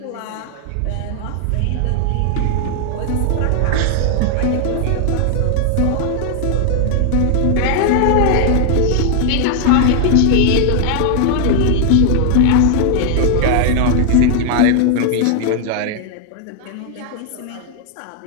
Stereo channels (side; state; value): both; different; correlation 0.00